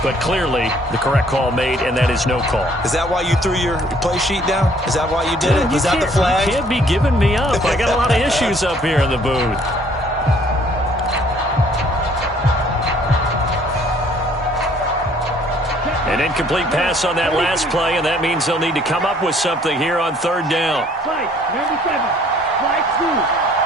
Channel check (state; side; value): normal; both; correlation 0.60